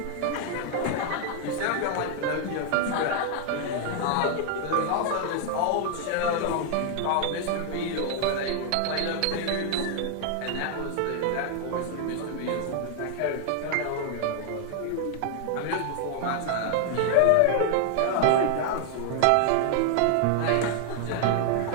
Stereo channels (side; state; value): both; different; correlation 0.00